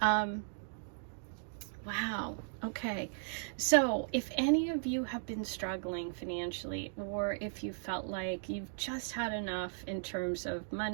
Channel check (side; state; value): left; silent; digital silence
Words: Wow. Okay. So if any of you have been struggling financially, or if you felt like you've just had enough in terms of